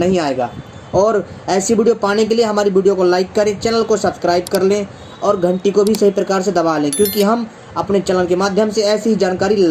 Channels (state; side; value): identical; both; correlation 1.00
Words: और ऐसी वीडियो पाने के लिए हमारी वीडियो को लाइक करें, चैनल को सब्सक्राइब कर लें और घंटी को भी सही प्रकार से दबा लें, क्योंकि हम अपने चैनल के माध्यम से ऐसी ही जानकारी